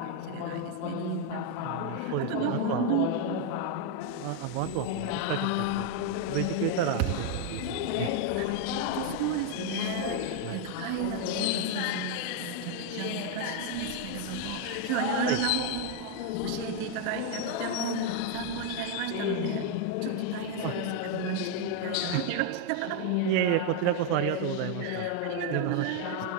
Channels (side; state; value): both; different; correlation 0.01